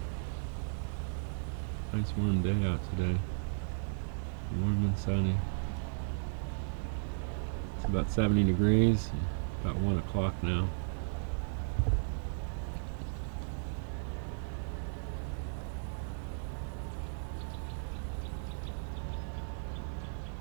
Nice warm day out today. Warm and sunny. It's about 70 degrees. About 1 o'clock now.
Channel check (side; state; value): left; silent; digital silence